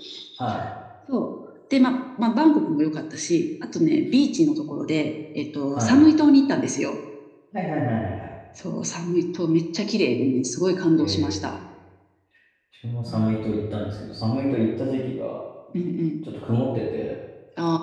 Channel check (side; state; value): both; identical; correlation 1.00